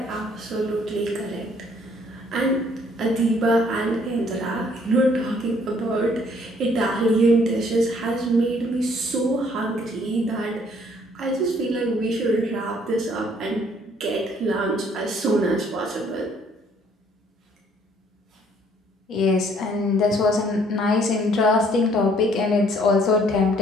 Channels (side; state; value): both; normal; correlation 0.62